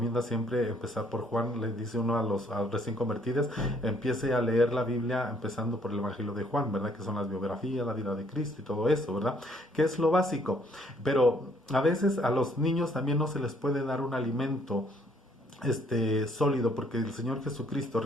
siempre empezar por Juan. Le dice uno a los recién convertidos: empiece a leer la Biblia empezando por el evangelio de Juan, ¿verdad? Que son las biografías, la vida de Cristo y todo eso, ¿verdad? Que es lo básico. Pero a veces a los niños también no se les puede dar un alimento sólido, porque el Señor Jesucristo,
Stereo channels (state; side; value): normal; both; correlation 0.65